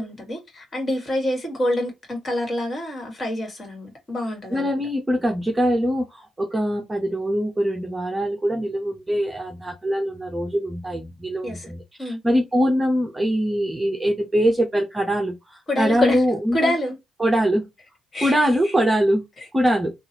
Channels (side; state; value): both; normal; correlation 0.90